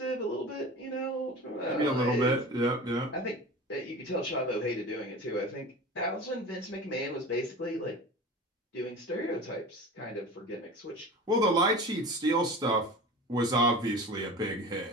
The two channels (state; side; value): normal; both; correlation 0.34